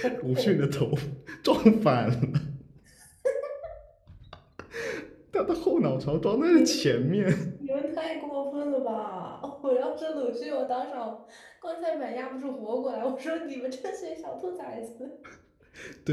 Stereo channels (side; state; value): both; identical; correlation 1.00